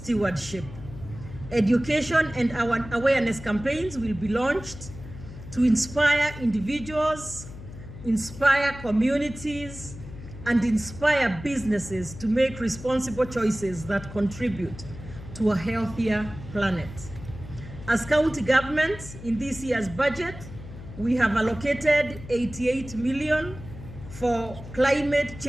Education and our awareness campaigns will be launched to inspire individuals, inspire communities, and inspire businesses to make responsible choices that contribute to a healthier planet. As county government, in this year's budget, we have allocated 88 million for climate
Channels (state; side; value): noise; left; hum, 14 dB below the sound